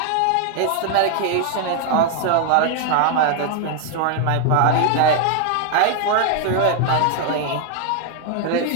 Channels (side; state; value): both; different; correlation 0.00